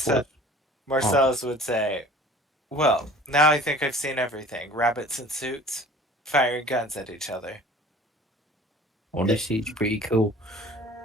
Marcellus would say, "Well, now I think I've seen everything. Rabbits in suits, firing guns at each other." Honestly, it's pretty cool.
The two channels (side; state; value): both; normal; correlation 0.47